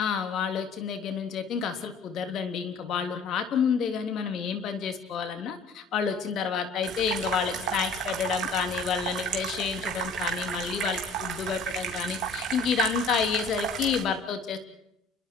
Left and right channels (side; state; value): right; quieter; 3.7 dB